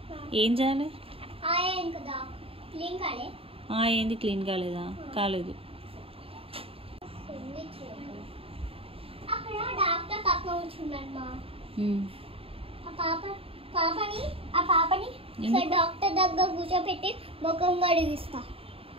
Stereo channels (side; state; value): left; late; 0.27 ms